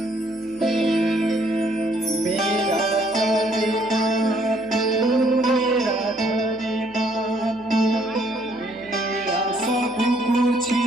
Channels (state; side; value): noise; right; hum, 27 dB below the sound